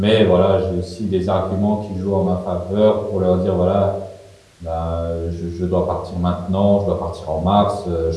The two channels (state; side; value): identical; both; correlation 1.00